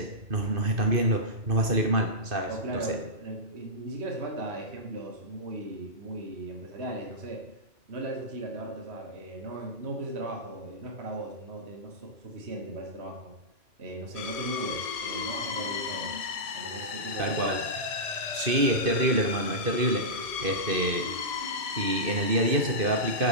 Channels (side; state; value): left; late; 2.5 ms